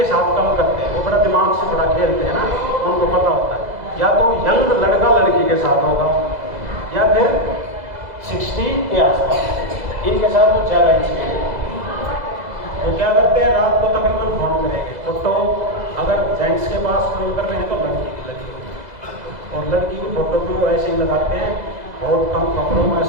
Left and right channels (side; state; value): left; late; 2.0 ms